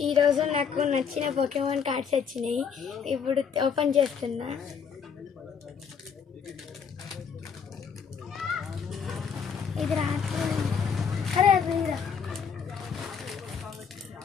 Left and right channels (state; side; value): quieter; right; 6.7 dB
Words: ఈరోజు నాకు నచ్చిన పోకెమాన్ కార్డ్స్ వచ్చినాయి. ఇప్పుడు ఓపెన్ చేస్తున్నా. ఇది రాత్రి అరే అది